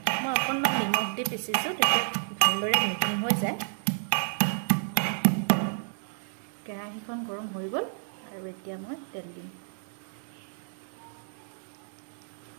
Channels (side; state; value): left; silent; 58 dB below the other